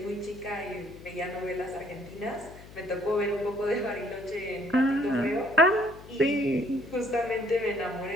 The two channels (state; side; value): noise; left; hum, 18 dB below the sound